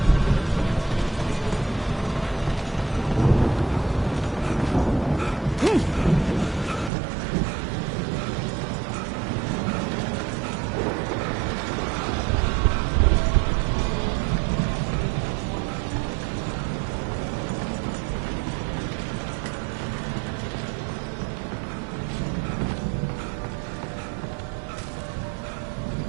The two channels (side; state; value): left; drops out; at 6.9 s